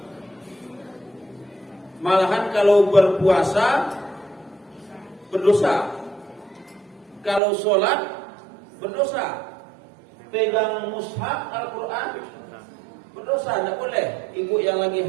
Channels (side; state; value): left; drops out; at 7.4 s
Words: Malahan kalau berpuasa berdosa, kalau sholat berdosa, pegang mushaf Al-Quran berdosa, tidak boleh. Ibu yang lagi